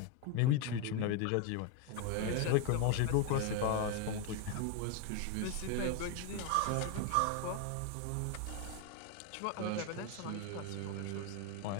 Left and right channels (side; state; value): both; different; correlation 0.01